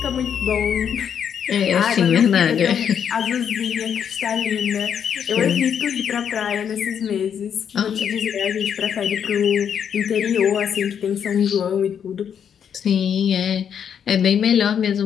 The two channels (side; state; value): right; quieter; 8.1 dB